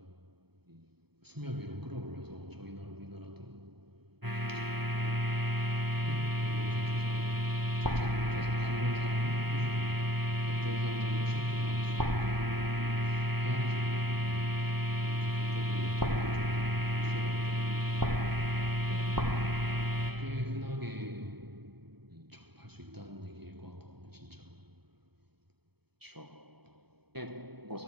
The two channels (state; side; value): late; left; 0.97 ms